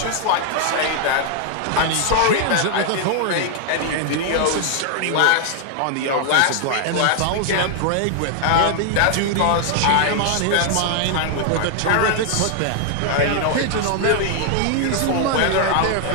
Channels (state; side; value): different; both; correlation 0.00